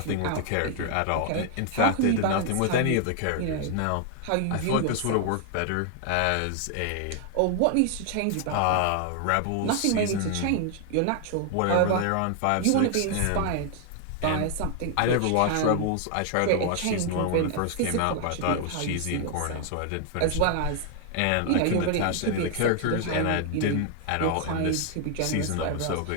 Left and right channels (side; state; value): both; different; correlation 0.00